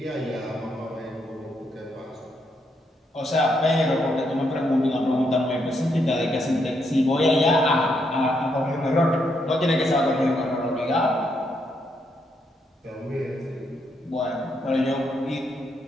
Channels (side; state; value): both; normal; correlation 0.77